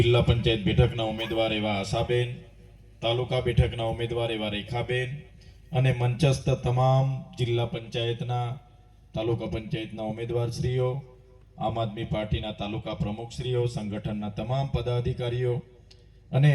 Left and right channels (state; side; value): identical; both; correlation 1.00